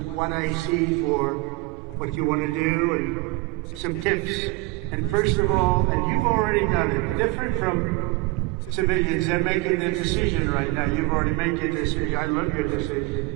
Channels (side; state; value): left; quieter; 23.5 dB